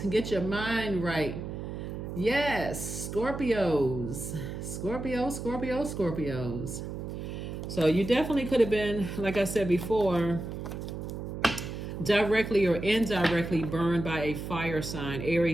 Get your mind right. Yes, Scorpios. Scorpios. So you definitely could have been, like I said before, directly or indirectly burned by a fire sign,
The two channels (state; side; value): noise; right; hum, 7 dB below the sound